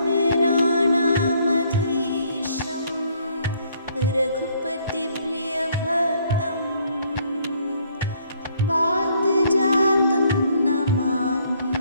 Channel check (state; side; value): inverted; both; correlation -0.65